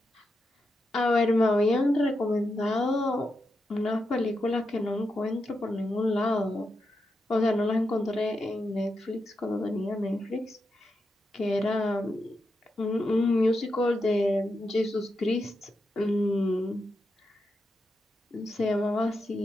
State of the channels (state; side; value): normal; both; correlation 0.86